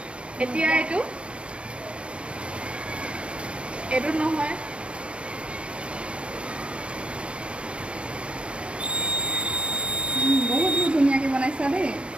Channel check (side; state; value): left; late; 0.058 ms